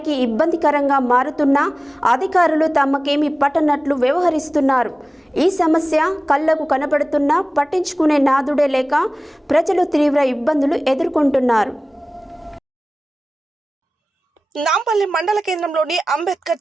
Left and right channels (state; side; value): normal; both; correlation 0.97